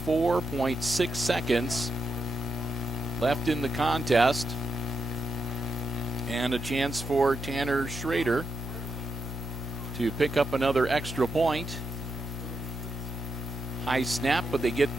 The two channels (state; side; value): normal; both; correlation 0.83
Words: seconds left in the contest, and a chance for Tanner Schrader to pick up another extra point. High snap, but they get